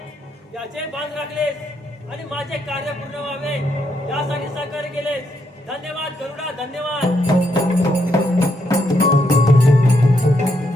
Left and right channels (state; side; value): normal; both; correlation 0.78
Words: याचे बांध राखलेस आणि माझे कार्य पूर्ण व्हावे यासाठी सहकार्य केलेस. धन्यवाद गरुडा, धन्यवाद.